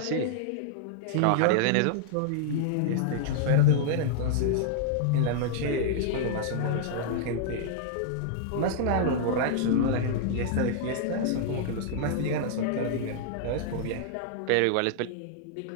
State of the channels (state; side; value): different; both; correlation -0.01